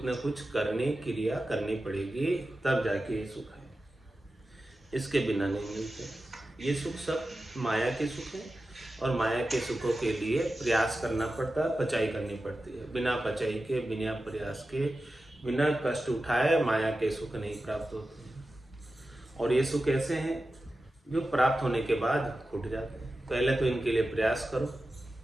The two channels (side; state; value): both; normal; correlation 0.93